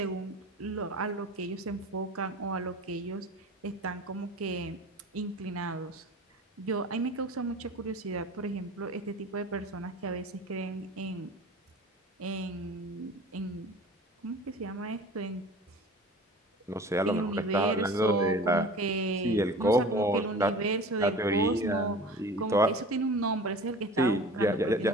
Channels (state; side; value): normal; both; correlation 0.40